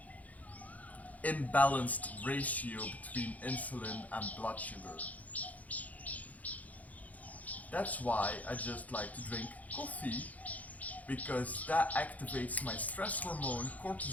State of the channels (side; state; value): right; late; 0.075 ms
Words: imbalanced ratio between insulin and blood sugar. That's why I just like to drink coffee, because that activates my stress hormone,